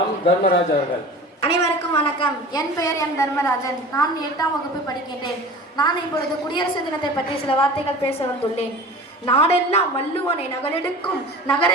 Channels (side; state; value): both; normal; correlation 0.38